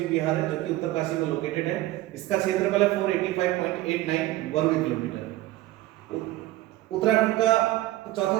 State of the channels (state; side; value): quieter; left; 16.6 dB